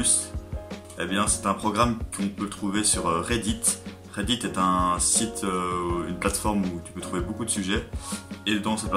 Eh bien, c'est un programme qu'on peut trouver sur Reddit. Reddit est un site, une plateforme où tu peux trouver beaucoup de sujets. Et dans cette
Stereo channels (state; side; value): identical; both; correlation 1.00